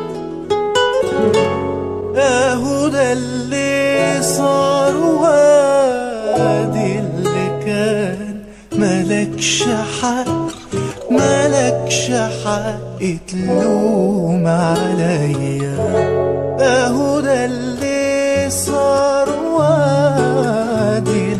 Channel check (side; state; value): both; identical; correlation 1.00